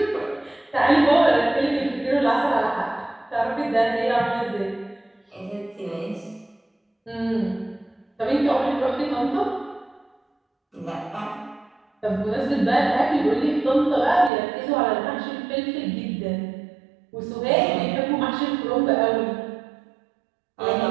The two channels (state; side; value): drops out; left; at 14.3 s